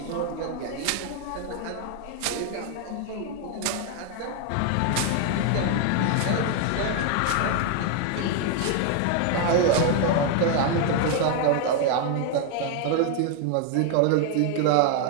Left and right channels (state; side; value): different; both; correlation 0.00